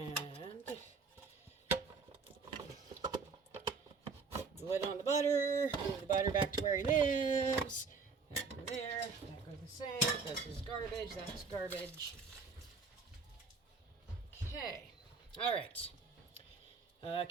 put the lid on the butter. Move the butter back to where he lives. That goes there. That goes the same. This is garbage. That's garbage. Okay. All right.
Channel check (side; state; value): left; quieter; 4.8 dB